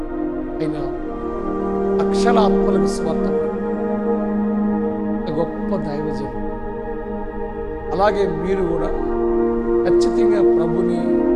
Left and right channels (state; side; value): identical; both; correlation 1.00